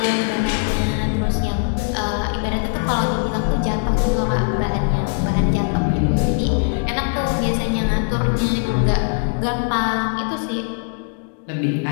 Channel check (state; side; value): silent; right; digital silence